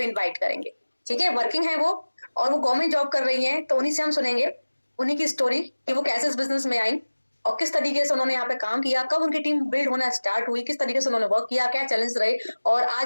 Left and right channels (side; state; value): both; inverted; correlation -1.00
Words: इनवाइट करेंगे, ठीक है। वर्किंग है वो और वो गवर्नमेंट जॉब कर रही है, तो उन्हीं से हम सुनेंगे उन्हीं की स्टोरी कि वो कैसे इस बिजनेस में आई और किस तरीके से उन्होंने यहाँ पे काम किया, कब उनकी टीम बिल्ड होना स्टार्ट हुई, किस तरीके से उन्होंने वर्क किया, क्या चैलेंज रहे और